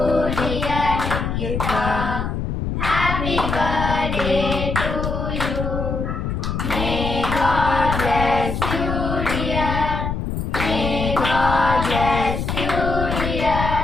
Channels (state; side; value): noise; left; rumble, 3 dB below the sound